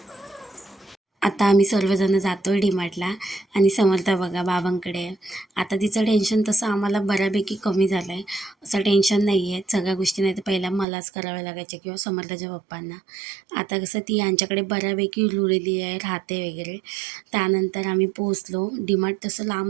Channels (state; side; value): drops out; left; at 10.9 s